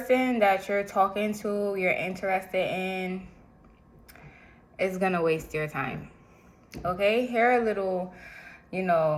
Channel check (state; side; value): identical; both; correlation 1.00